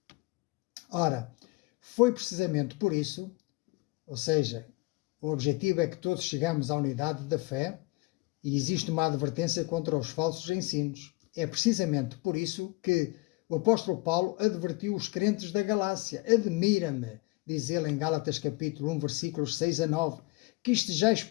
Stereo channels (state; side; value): quieter; right; 23.1 dB